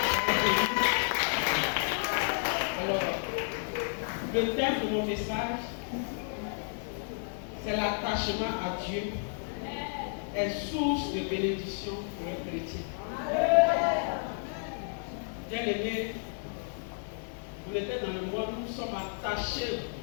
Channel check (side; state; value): right; silent; 57 dB below the other